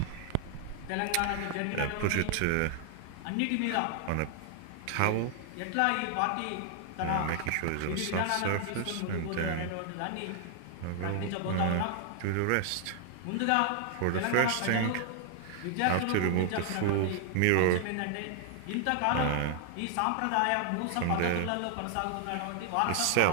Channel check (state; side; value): different; both; correlation 0.00